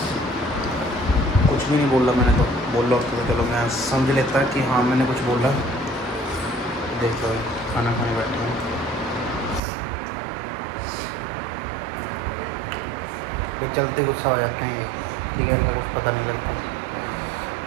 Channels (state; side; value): drops out; left; at 9.6 s